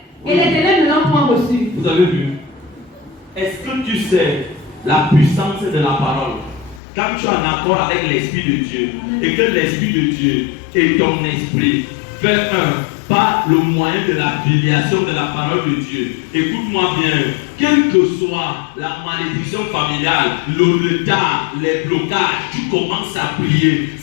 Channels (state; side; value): drops out; right; at 6.8 s